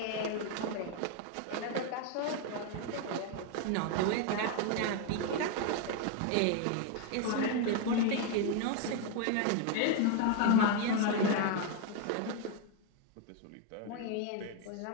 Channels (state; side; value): different; both; correlation 0.01